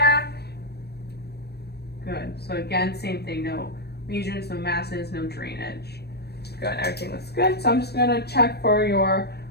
Good. So again, same thing. No lesions, no masses, no drainage. Good. Everything looks good. So I'm just gonna check for your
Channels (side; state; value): right; late; 0.47 ms